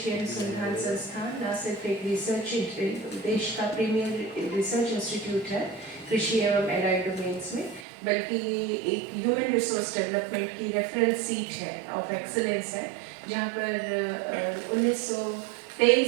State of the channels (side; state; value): left; drops out; at 7.9 s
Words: अनुसंधान संस्थान न सिर्फ एक रिसर्च देश का प्रीमियर रिसर्च इंस्टीट्यूट है कृषि एवं एलाइड डोमेन्स में, बल्कि ये एक ह्यूमन रिसोर्स डेवलपमेंट की रेफरेंस सीट है ऑफ एक्सीलेंस है, जहाँ पर